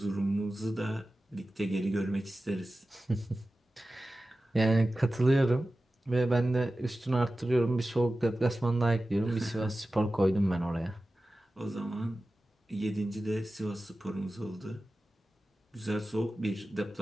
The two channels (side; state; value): both; normal; correlation 0.95